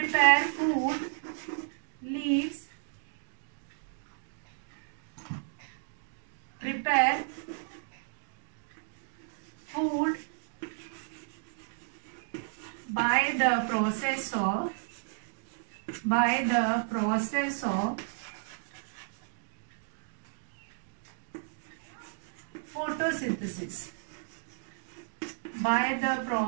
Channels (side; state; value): left; silent; digital silence